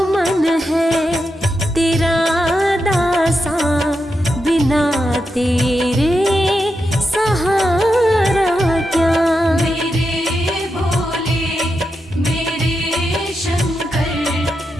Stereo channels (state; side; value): normal; both; correlation 0.86